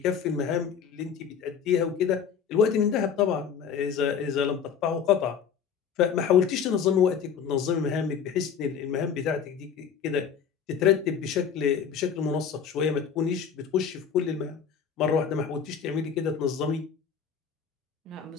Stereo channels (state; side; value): quieter; right; 7.2 dB